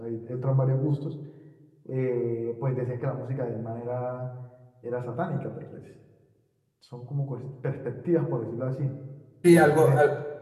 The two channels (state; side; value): identical; both; correlation 1.00